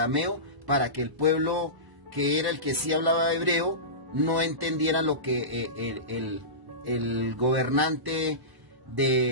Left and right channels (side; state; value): left; late; 1.0 ms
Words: para que el pueblo, que era el que sí hablaba hebreo, no entendiera lo que el gobernante